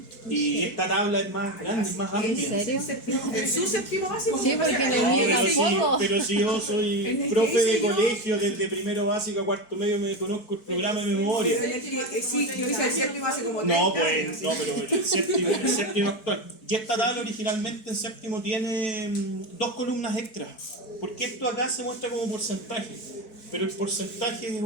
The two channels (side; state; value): right; late; 4.6 ms